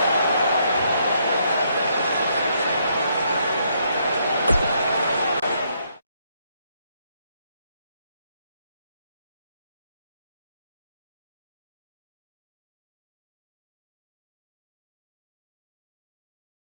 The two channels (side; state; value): both; inverted; correlation -0.73